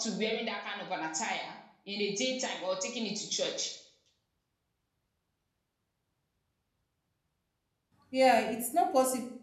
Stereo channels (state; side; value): identical; both; correlation 1.00